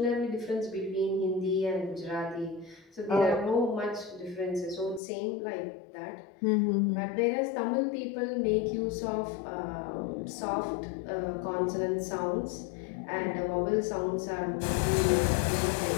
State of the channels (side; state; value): right; drops out; at 5.0 s